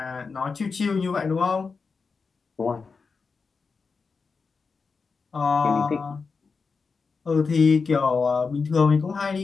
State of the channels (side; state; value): right; quieter; 4.9 dB